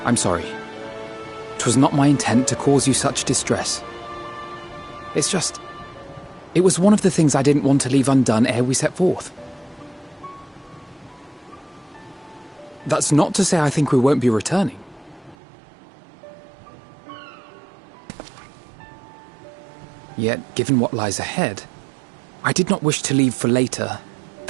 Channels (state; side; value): drops out; left; at 15.4 s